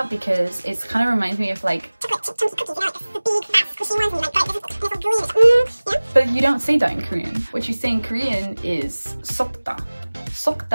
because it kind of reminds me of like but you don't say that in Korean. What you say in Korean is sokda.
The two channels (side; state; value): both; inverted; correlation -1.00